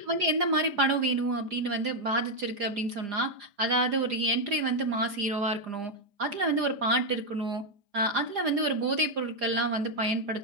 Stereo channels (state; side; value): late; left; 4.9 ms